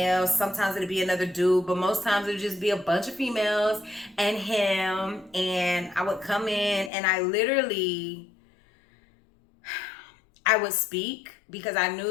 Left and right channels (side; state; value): right; drops out; at 6.9 s